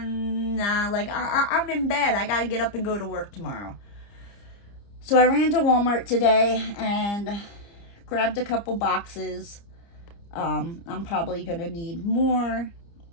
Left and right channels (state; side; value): late; right; 30 ms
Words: like, I'm in bed, I gotta get up and go to work tomorrow. So I ran to Walmart today and grabbed a couple boxes. I'm probably gonna need more,